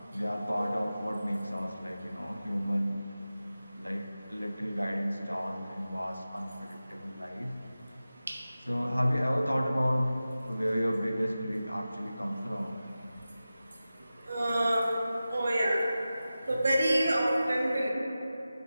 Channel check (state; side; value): inverted; both; correlation -0.95